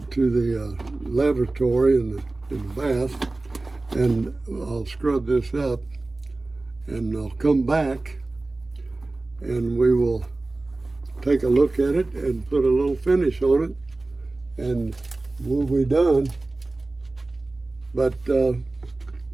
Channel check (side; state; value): left; quieter; 3.1 dB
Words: lavatory in the bath, and I'll scrub this up, and I'll come back and we will take a look at it and put a little finish on it, and we'll be done. But see,